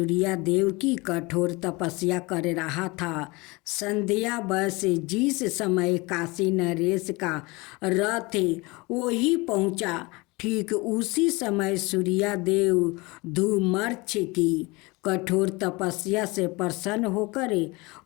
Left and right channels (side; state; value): right; quieter; 24.8 dB